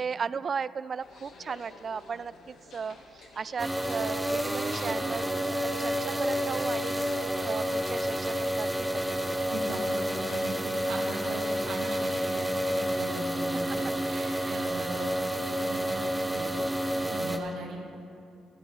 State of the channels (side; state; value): both; normal; correlation 0.92